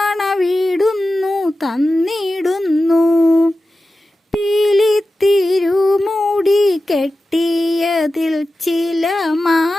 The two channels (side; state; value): both; normal; correlation 0.93